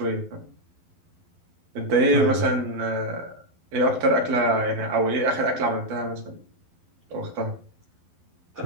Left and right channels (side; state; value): left; late; 12 ms